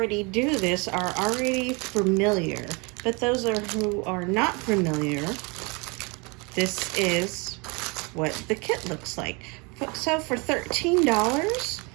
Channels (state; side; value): quieter; left; 29.5 dB